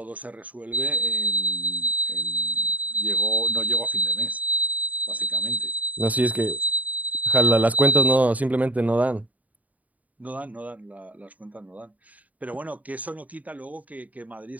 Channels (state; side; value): late; left; 0.073 ms